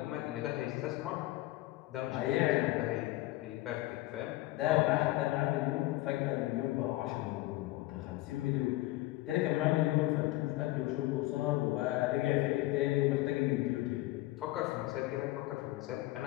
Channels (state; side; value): quieter; right; 18.0 dB